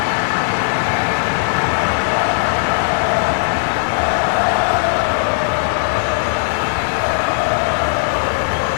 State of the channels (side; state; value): right; silent; 68 dB below the other